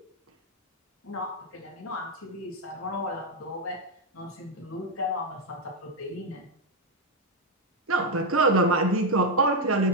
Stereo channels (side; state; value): both; normal; correlation 0.03